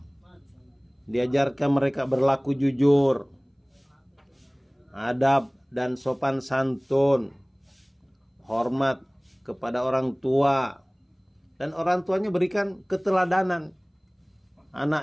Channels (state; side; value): identical; both; correlation 1.00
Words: diajarkan mereka berlaku jujur, adab dan sopan santun, hormat kepada orang tua, dan orang tuanya berikan keteladanan.